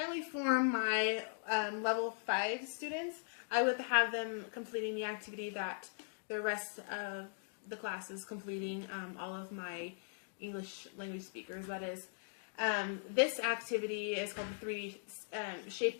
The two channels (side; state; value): right; silent; digital silence